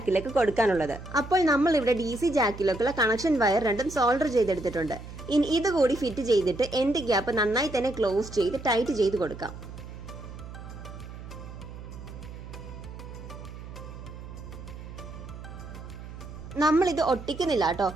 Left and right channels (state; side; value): noise; right; hum, 12 dB below the sound